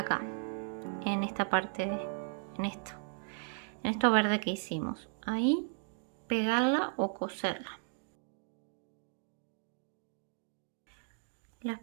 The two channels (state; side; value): silent; left; 54 dB below the other